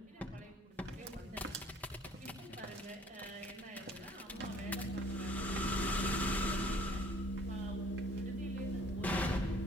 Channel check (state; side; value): normal; both; correlation 0.56